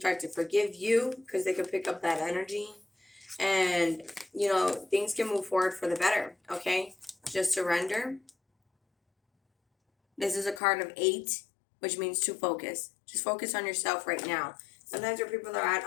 to forgive you because they can pick up that energy. And, things can move forward for the better, okay? Just surrender. This is a card of 8, which means to focus. Just focus on yourself right now. Sometimes where people are at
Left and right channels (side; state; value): right; drops out; at 10.6 s